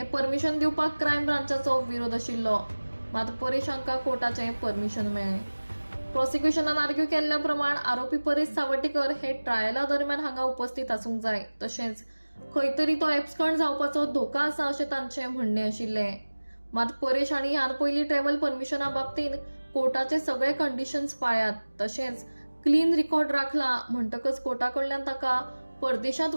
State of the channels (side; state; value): both; inverted; correlation -1.00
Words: परमिशन दिवपाक क्रायम ब्रांचाचो विरोध आशिल्लो, मात परेश हांका कोर्टाचें परमिशन मेळ्ळें। प्रॉसिक्युशनान आर्ग्यू केल्ल्या प्रमाण आरोपी परेश सावड्डेकर हे ट्रायला दरम्यान हांगा उपस्थित आसूंक जाय, तशेंच खंय तरी तो एब्सकॉन्ड जावपाचो धोका आसा अशें तांचें म्हणणें आशिल्लें। मात परेश हांणी ह्यान पयलीं ट्रॅव्हल परमिशना बाबतींत कोर्टाचे सगळे कंडिशन्स पाळ्यात, तशेंच क्लीन रिकॉर्ड राखला म्हणटकच कोर्टा कडल्यान ताका परदेशांत